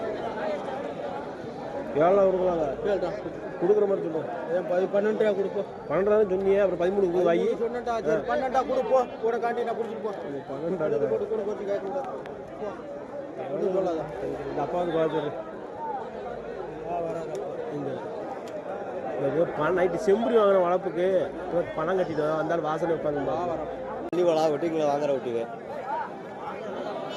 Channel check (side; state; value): both; identical; correlation 1.00